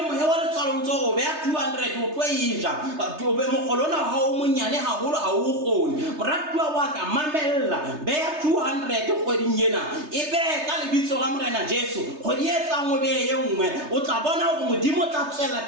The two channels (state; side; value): late; left; 3.3 ms